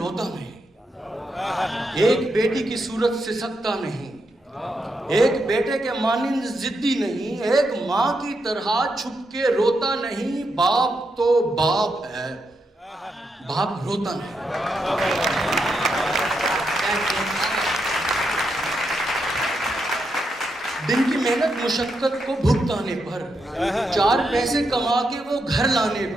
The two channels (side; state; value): both; normal; correlation 0.82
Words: نہیں، ایک بیٹی کی صورت سے سکتا نہیں، ایک بیٹے کے مانند ضدی نہیں، ایک ماں کی طرح چھپ کے روتا نہیں۔ باپ تو باپ ہے، باپ روتا نہیں۔ دن کی محنت مشقت کو بھگتانے پر، چار پیسے کما کے وہ گھر لانے